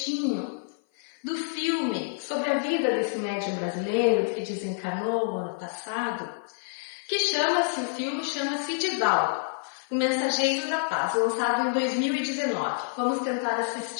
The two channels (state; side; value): silent; right; 55 dB below the other